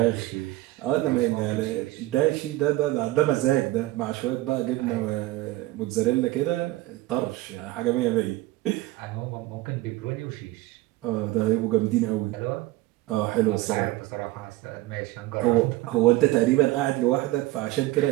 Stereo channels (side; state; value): left; quieter; 17.7 dB